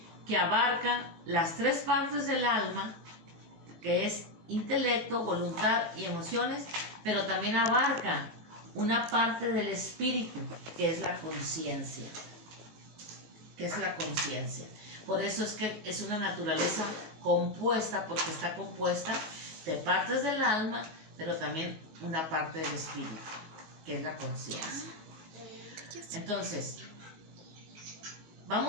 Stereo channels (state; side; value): late; left; 19 ms